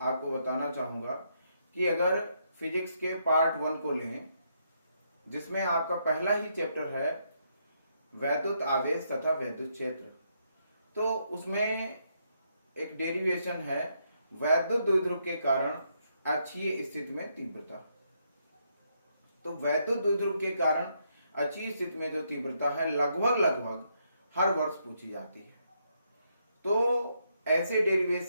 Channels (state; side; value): inverted; both; correlation -0.77